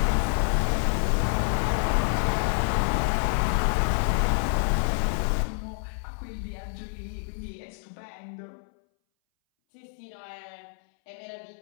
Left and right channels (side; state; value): right; silent; 60 dB below the other